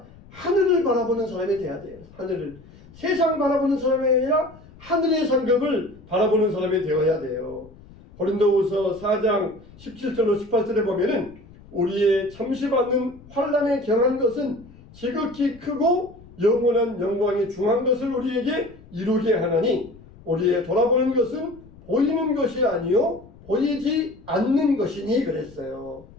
하늘을 바라보는 사람이 돼야 돼요. 하늘을. 세상 바라보는 사람이 아니라 하늘의 상급을 바라보는 사람이 되어야 돼요. 고린도후서 4장 17절로 18절에 보면은 우리의 잠시 받는 환난에 경한 것은 지극히 크고 영원한 영광이 중한 것을 우리에게 이루게 하나니 우리의 돌아보는 것은 보이는 것이 아니요 보이지 않는 것이니 그랬어요.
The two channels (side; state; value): left; noise; rumble, 22 dB below the sound